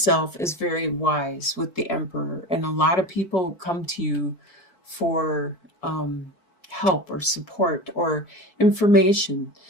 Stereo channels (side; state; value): right; late; 4.6 ms